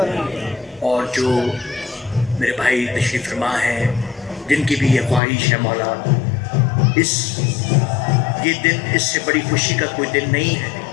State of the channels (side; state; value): right; drops out; at 5.2 s